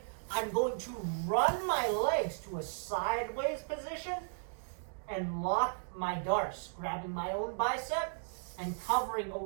I'm going to run my legs to a sideways position and lock my Darce, grabbing my own bicep and covering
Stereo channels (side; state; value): left; silent; digital silence